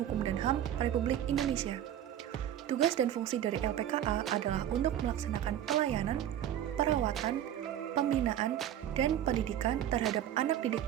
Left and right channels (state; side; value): quieter; left; 11.1 dB